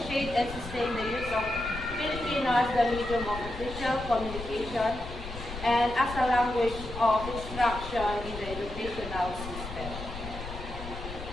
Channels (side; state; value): left; noise; rumble, 10 dB below the sound